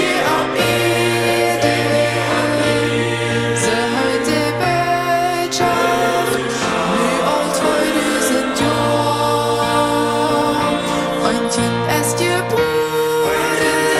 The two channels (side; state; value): both; identical; correlation 1.00